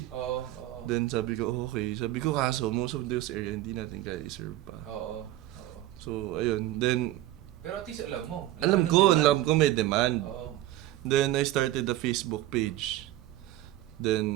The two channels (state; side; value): quieter; left; 14.8 dB